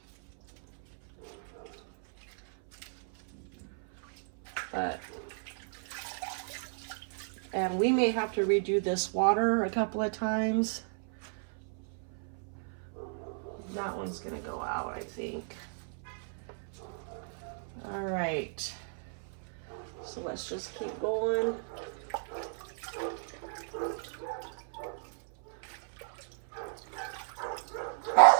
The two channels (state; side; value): silent; left; 55 dB below the other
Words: And we may have to redo this water a couple of times. That one's gonna go out, I think. All right, so let's just keep going.